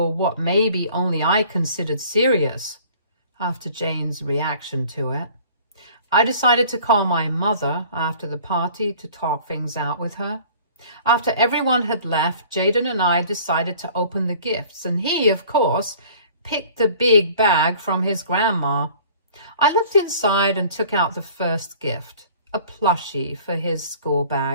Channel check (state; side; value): inverted; both; correlation -0.49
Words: what maybe only I considered serious after Jane's reaction to it. I decided to call my mother after the party to talk things out with her. After everyone had left, Jaden and I decided to open the gifts, and he, of course, picked the big bag from his grandma. I looked inside and took out the first gift, a plushie for his school